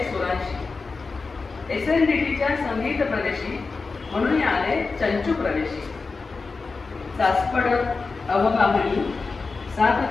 सुरांशी. SNDTच्या संगीत प्रदेशी म्हणून आले चंचू प्रवेशी. सासपडत अवगाहणी, साथ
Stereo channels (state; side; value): quieter; right; 4.2 dB